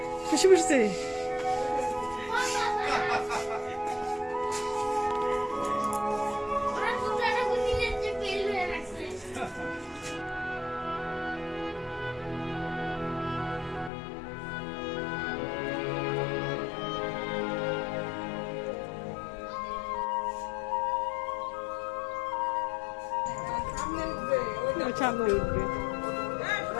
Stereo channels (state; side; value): drops out; right; at 13.9 s